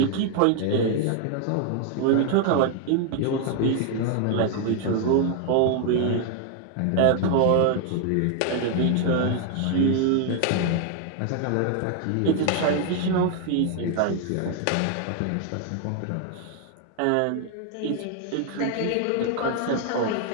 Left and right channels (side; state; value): both; different; correlation 0.00